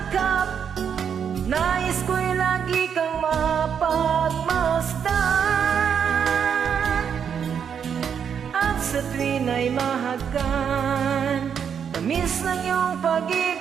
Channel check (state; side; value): quieter; left; 7.6 dB